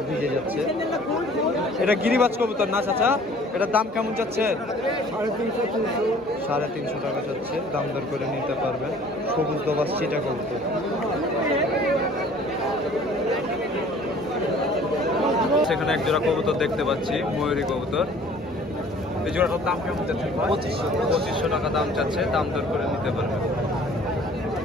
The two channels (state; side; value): normal; both; correlation 0.51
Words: ভিজে যাচ্ছে। এটা গিরিবাজ কবুতর না চাচা? এটার দাম কেমন যাচ্ছে? 350 টাকা যাচ্ছে, দাম দর করে নিতে পারবেন। সবুজ দোবাস চিটা কবুতর। সেখানে এক জোড়া কবুতর দেখতে পাচ্ছি, ময়ূরী কবুতর। এই জোড়াটার দাম কেমন যাচ্ছে? 2500 টাকা দাম চাচ্ছে, দাম দর করে নিতে পারবেন।